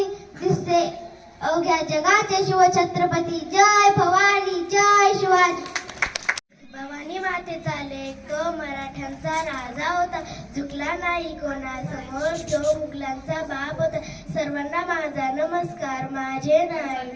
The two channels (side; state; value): both; identical; correlation 1.00